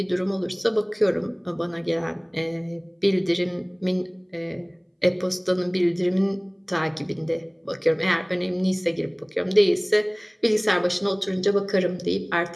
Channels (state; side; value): identical; both; correlation 1.00